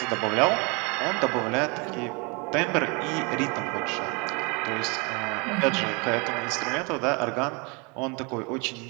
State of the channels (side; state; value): left; quieter; 30.5 dB